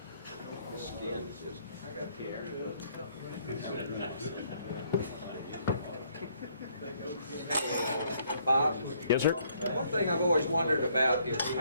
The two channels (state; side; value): inverted; both; correlation -0.67